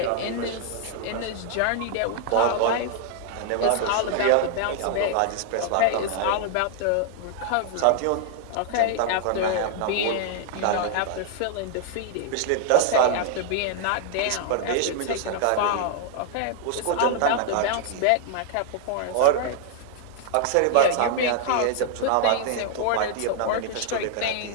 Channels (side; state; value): both; different; correlation 0.00